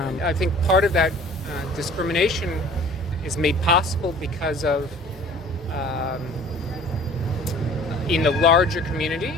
I think part of that discrimination is made possible because of in the larger community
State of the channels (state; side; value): normal; both; correlation 0.48